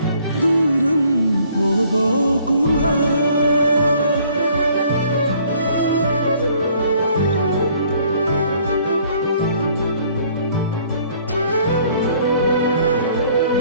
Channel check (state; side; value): inverted; both; correlation -0.60